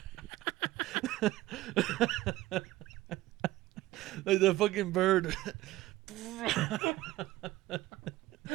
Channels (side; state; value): left; quieter; 16.8 dB